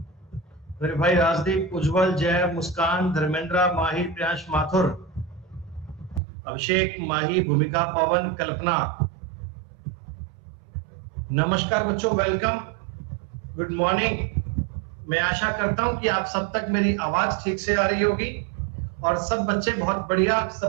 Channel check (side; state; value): left; drops out; at 6.2 s